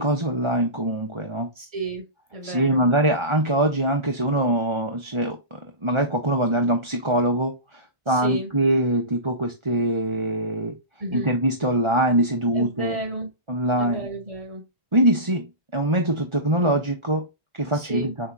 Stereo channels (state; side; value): late; left; 1.6 ms